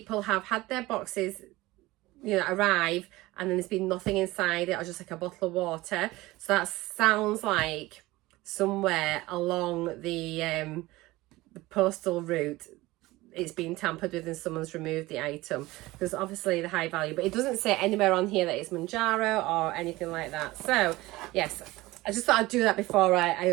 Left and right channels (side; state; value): left; quieter; 19.3 dB